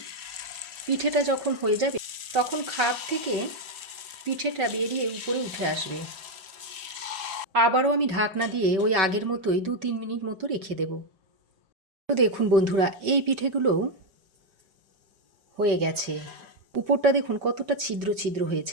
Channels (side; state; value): left; late; 5.3 ms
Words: পিঠেটা যখন হয়ে যাবে তখন খাপ থেকে পিঠেটা বেরিয়ে উপরে উঠে আসবে। আবারও আমি ঢাকনা দিয়ে ওই আগের মতোই 2-3 মিনিট মতো রেখে দেব। তো দেখুন বন্ধুরা, এই পিঠেগুলোও হয়ে গেছে। উপরটা দেখুন কতটা ছিদ্র ছিদ্র